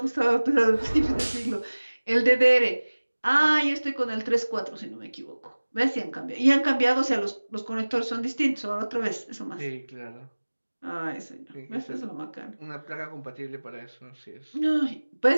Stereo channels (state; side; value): inverted; both; correlation -1.00